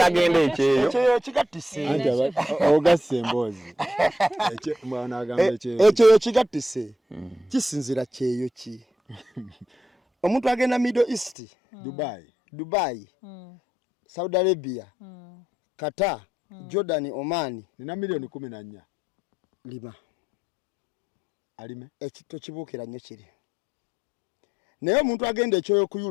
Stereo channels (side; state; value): right; drops out; at 11.4 s